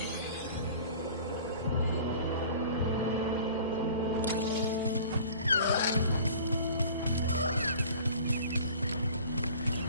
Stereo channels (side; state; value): both; inverted; correlation -0.45